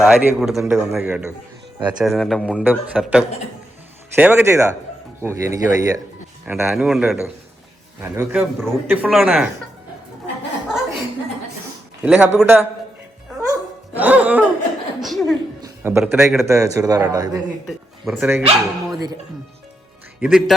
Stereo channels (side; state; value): both; normal; correlation 0.83